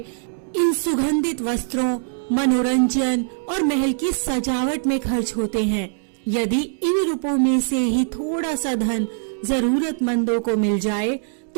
इन सुगंधित वस्त्रों, मनोरंजन और महल की सजावट में खर्च होते हैं। यदि इन रुपयों में से ही थोड़ा सा धन जरूरतमंदों को मिल जाए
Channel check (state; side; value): silent; left; digital silence